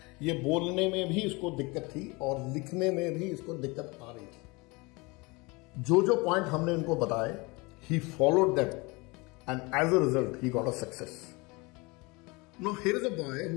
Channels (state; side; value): quieter; right; 26.0 dB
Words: ये बोलने में भी इसको दिक्कत थी और लिखने में भी इसको दिक्कत आ रही थी. जो पॉइंट हमने इनको बताए, he followed them and as a result he got a success. Now here is a boy